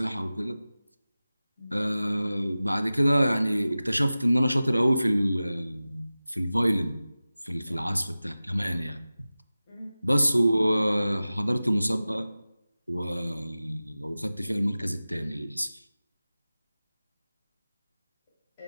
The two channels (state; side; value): inverted; both; correlation -0.96